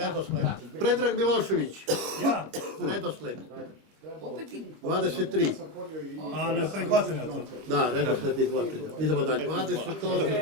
Predrag Milošević. Ja. Redosled. 23. A ne prihvatam ja to. Da, redosled izvlačenja. Idemo dalje.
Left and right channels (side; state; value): left; late; 25 ms